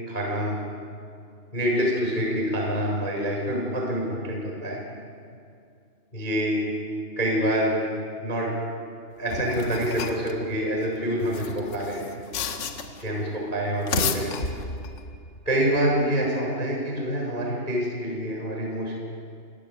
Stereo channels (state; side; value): late; right; 2.9 ms